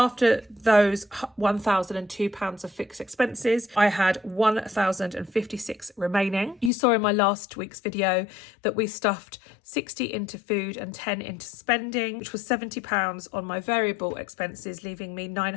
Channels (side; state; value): right; drops out; at 6.7 s